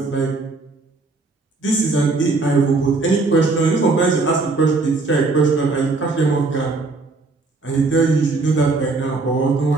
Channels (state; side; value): quieter; left; 3.7 dB